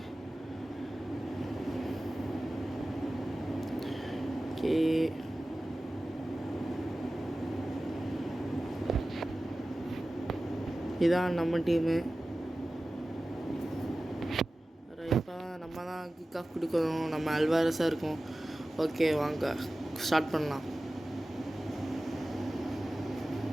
ஓகே, இதான் நம்ம டீமு. இப்போ நம்ம தான் கிக் ஆஃப் கொடுக்கணும். நம்ம அல்வாரஸாக இருக்கும். ஓகே வாங்க ஸ்டார்ட் பண்ணலாம்.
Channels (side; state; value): both; normal; correlation 0.96